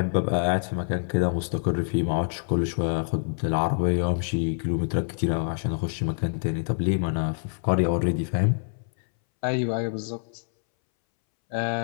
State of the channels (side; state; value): right; silent; 61 dB below the other